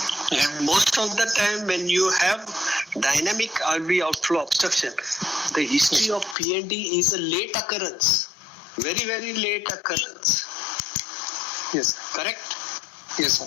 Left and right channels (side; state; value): right; drops out; at 6.4 s